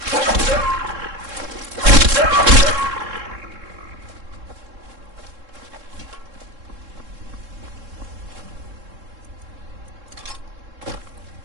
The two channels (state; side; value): late; left; 3.7 ms